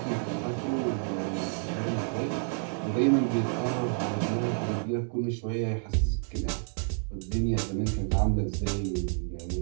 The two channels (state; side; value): silent; left; 55 dB below the other